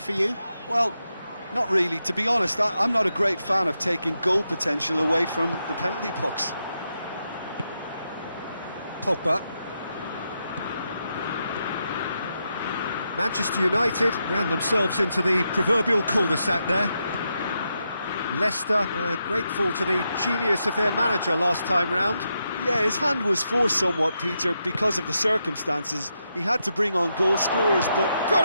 for you? Well, not really. To be honest, I'm not a great fan of taking goal potential away from the penalty pucks. Pogba. Manchester United ran themselves into the proverbial cul-de-sac there. Leicester were grateful to the genius of their manager last time round. Yeah, his hand was forced somewhat, Peter, because of the circumstances. He had to bring on goal scorers, but...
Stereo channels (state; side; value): inverted; both; correlation -0.84